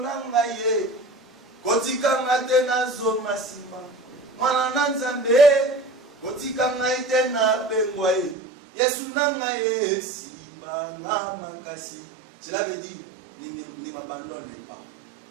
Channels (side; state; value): left; drops out; at 8.3 s